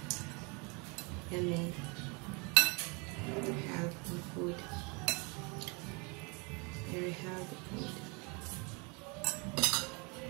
Yummy. Healthy food. Very healthy food.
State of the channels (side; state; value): left; quieter; 30.8 dB